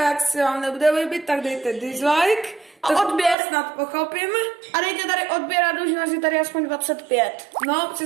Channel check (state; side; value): drops out; left; at 3.4 s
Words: jak se vám nebude líbit, tak dejte dislike. A To odběr. snad pochopím. A dejte tady odběr a dlužnost je tady aspoň 25. No,